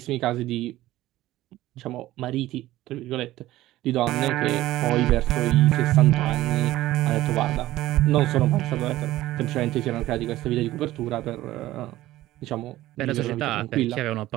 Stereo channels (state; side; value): quieter; left; 15.8 dB